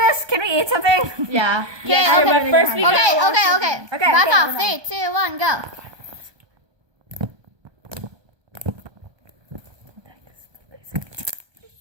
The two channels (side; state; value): left; late; 1.2 ms